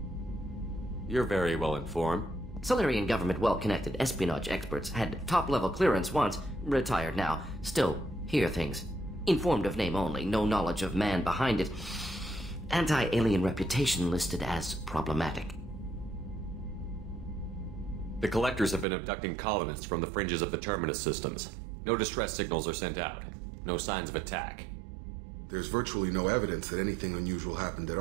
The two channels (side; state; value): left; drops out; at 18.9 s